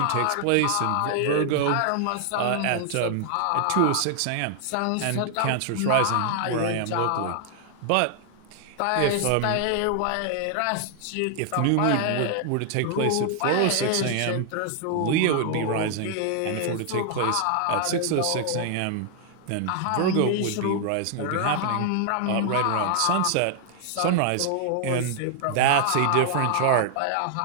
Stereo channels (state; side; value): different; both; correlation 0.00